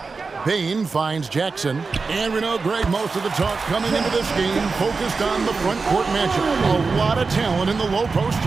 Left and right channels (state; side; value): quieter; left; 4.4 dB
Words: Bain finds Jackson. And we know, Greg, most of the talk coming into this game focused on the front court matchup. A lot of talent in the low post